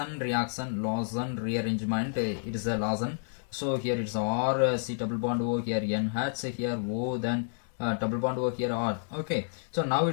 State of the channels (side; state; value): right; silent; digital silence